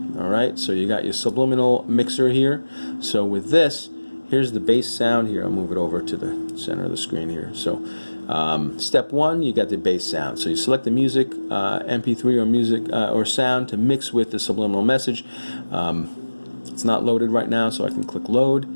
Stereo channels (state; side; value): inverted; both; correlation -1.00